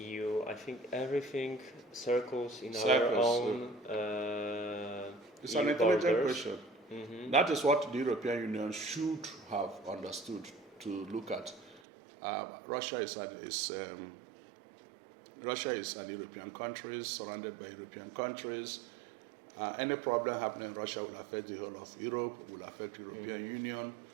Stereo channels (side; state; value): left; drops out; at 11.8 s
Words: I think everything circles in our own it's EU an intelligent borders. question. That is what the European Union should have understood to look at. Russia is an European country, surrounded by European countries. Any problem happening in Russia will affect the whole of Europe, will affect the European Union.